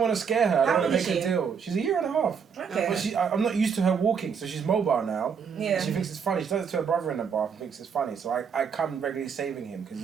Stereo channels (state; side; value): quieter; left; 6.6 dB